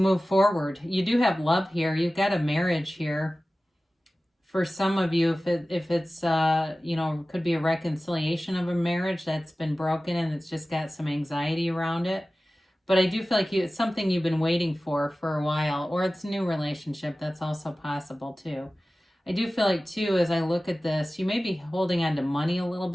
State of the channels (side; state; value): both; normal; correlation 0.96